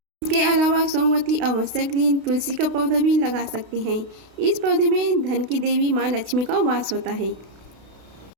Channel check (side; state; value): left; late; 32 ms